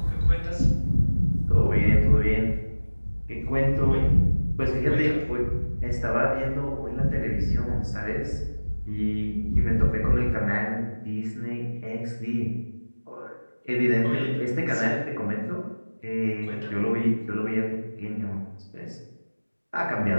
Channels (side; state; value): both; inverted; correlation -1.00